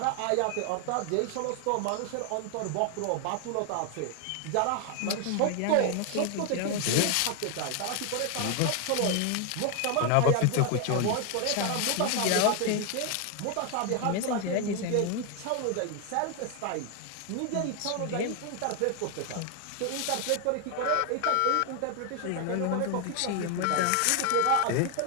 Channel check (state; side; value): different; both; correlation 0.00